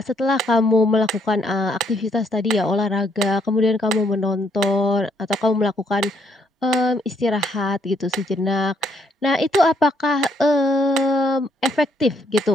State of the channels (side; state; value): both; normal; correlation 0.70